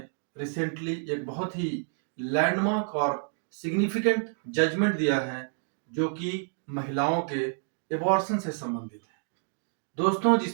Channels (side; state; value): left; silent; digital silence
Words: रिसेंटली एक बहुत ही लैंडमार्क और सिग्निफिकेंट जजमेंट दिया है, जो कि महिलाओं के एबॉर्शन से संबंधित है। दोस्तों,